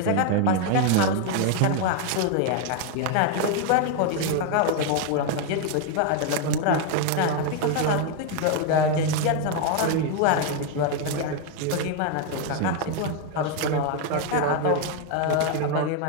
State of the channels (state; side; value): different; both; correlation 0.01